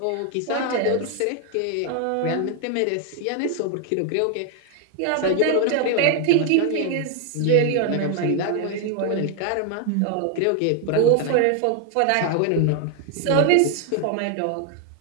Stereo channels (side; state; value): both; different; correlation 0.00